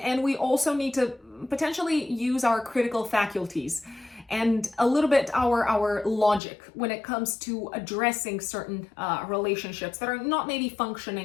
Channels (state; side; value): drops out; right; at 6.4 s